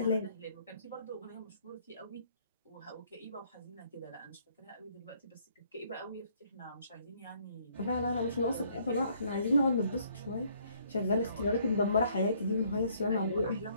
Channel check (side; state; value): both; inverted; correlation -0.64